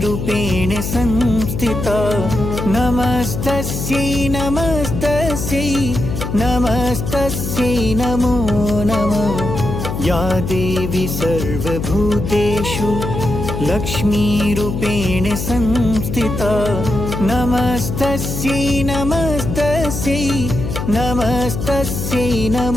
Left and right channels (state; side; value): noise; left; hum, 4 dB below the sound